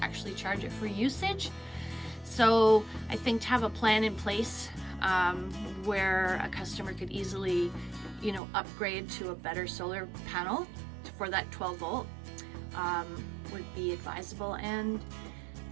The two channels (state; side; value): drops out; left; at 8.4 s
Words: actually charge it for usage. So I think to have a plan in place where a customer could easily upgrade to a better solar panel for that 12-volt would be advisable. And